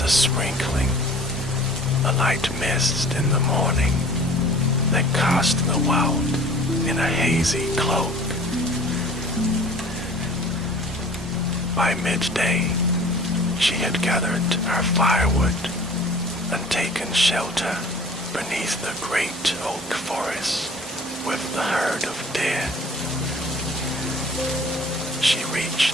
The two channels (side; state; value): both; normal; correlation 0.47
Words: a sprinkling, a light mist in the morning that cast the world in a hazy cloak. By midday, she had gathered her firewood and taken shelter beneath the great oak forest with the herd of deer. She